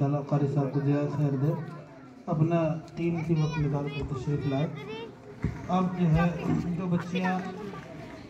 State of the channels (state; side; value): identical; both; correlation 1.00